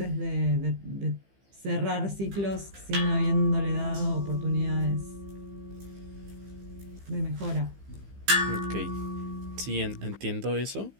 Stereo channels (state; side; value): late; left; 15 ms